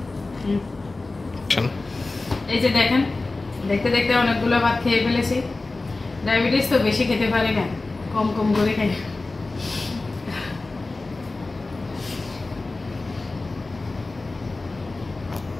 এই যে দেখেন, দেখতে দেখতে অনেকগুলো ভাত খেয়ে ফেলেছি। ডায়াবেটিস তো বেশি খেতে পারি না, কম কম করে খাই।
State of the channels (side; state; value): right; quieter; 3.3 dB